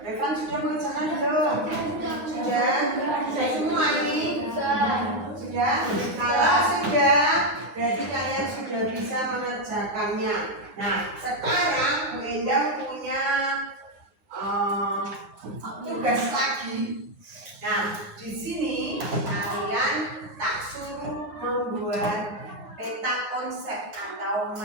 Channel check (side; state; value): left; late; 9.5 ms